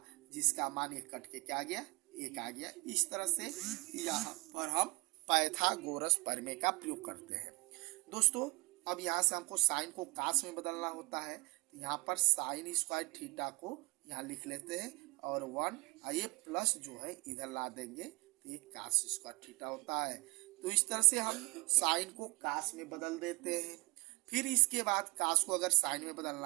जिसका मान ये कट के क्या आ गया, 1 आ गया। इस तरह से यहाँ पर हम पाइथागोरस प्रमेय का प्रयोग करते हैं। दोस्तों अब यहाँ से हमको साइन को कास में बदलना होता है, तो यहाँ पर साइन स्क्वायर थीटा को यहाँ लिख लेते हैं, और 1 ये प्लस जो है इधर ला देंगे, तो ये कास स्क्वायर थीटा होता है। तो इस तरह से हम साइन को कास में बदल देते हैं। फिर इसके बाद कास को अगर साइन में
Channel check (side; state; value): left; quieter; 27.1 dB